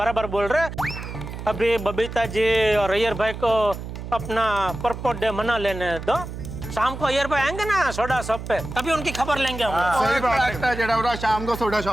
बोल रहे। अभी बबीता जी और अय्यर भाई को अपना परपोट डे मना लेने दो, शाम को अय्यर भाई आएंगे ना सोडा शॉप पे, तभी उनकी खबर लेंगे हम। सही बात है। जड़ा शाम को सोडा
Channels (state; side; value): noise; right; hum, 9 dB below the sound